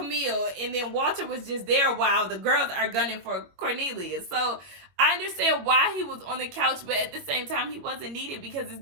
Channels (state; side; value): late; left; 21 ms